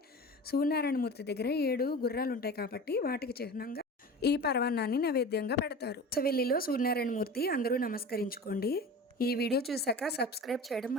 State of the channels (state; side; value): normal; both; correlation 0.34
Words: సూర్యనారాయణ మూర్తి దగ్గర 7 గుర్రాలు ఉంటాయి కాబట్టి వాటికి చిహ్నంగా ఈ పరమాన్నాన్ని నైవేద్యంగా పెడతారు. సవెల్లిలో సూర్యనారాయణ మూర్తి అందరూ నమస్కరించుకోండి. ఈ వీడియో చూసాక సబ్స్క్రైబ్ చేయడం